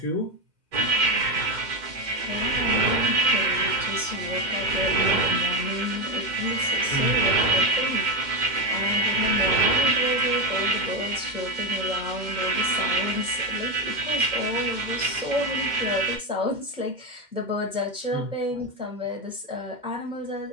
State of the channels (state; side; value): late; left; 2.1 ms